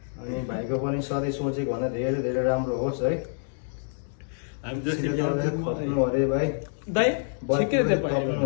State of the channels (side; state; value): right; silent; digital silence